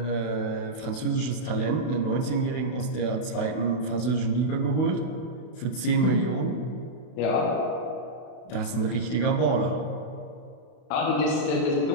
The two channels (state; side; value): late; right; 32 ms